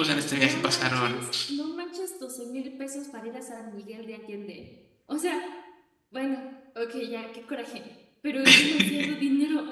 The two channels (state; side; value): identical; both; correlation 1.00